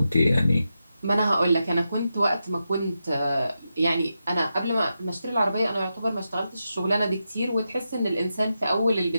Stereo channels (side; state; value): both; inverted; correlation -0.88